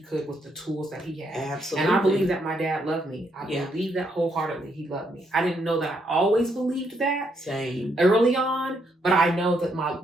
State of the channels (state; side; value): normal; both; correlation 0.75